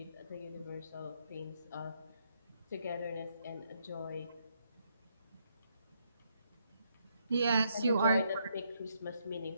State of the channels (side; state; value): both; inverted; correlation -0.75